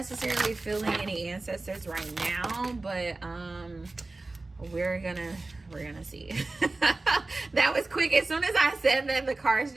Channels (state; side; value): quieter; left; 3.2 dB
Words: feeling any ancestors right now, but we're gonna see. That was quick. As soon as I said that, the cards